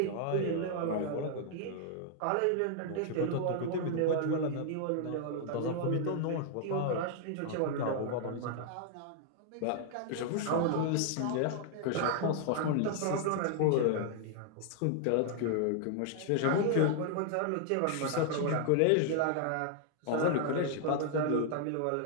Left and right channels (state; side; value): different; both; correlation 0.00